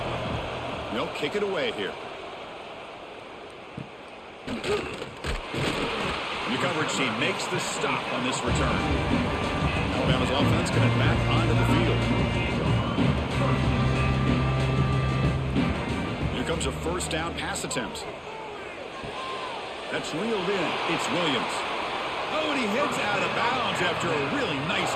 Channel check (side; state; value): both; identical; correlation 1.00